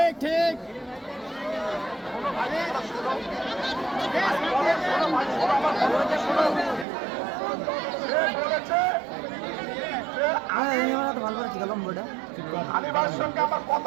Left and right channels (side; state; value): left; drops out; at 6.9 s